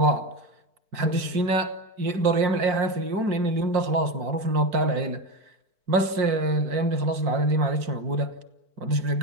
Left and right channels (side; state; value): left; late; 4.5 ms